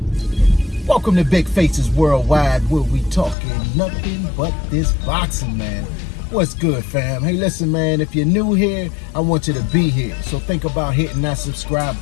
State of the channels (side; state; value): right; drops out; at 3.4 s